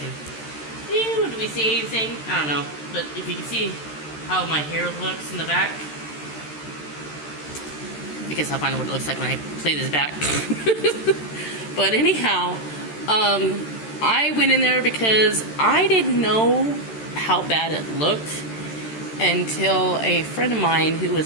Do we see anything? I don't know. But if you can see how my hair looks in the back. I guess I'll find out what it looks like when I play this back. But anyhow, I went in there because I didn't know how bad it looked until a friend of mine who was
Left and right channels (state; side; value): late; right; 13 ms